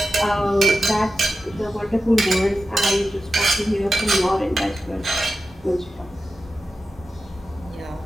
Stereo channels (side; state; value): both; normal; correlation 0.92